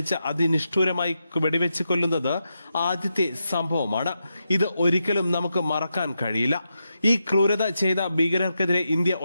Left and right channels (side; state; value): both; inverted; correlation -0.86